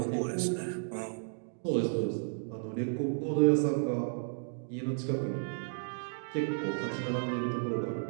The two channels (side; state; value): left; silent; digital silence